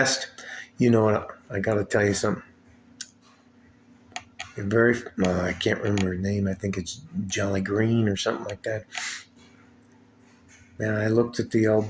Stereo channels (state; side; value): identical; both; correlation 1.00